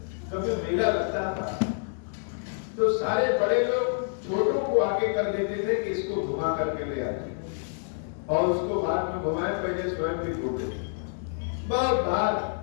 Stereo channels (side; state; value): right; silent; digital silence